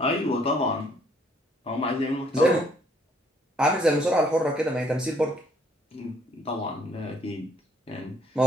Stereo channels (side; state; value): both; normal; correlation 0.64